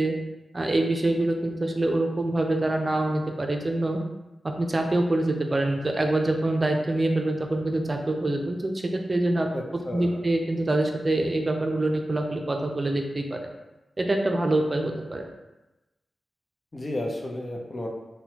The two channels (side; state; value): both; normal; correlation 0.94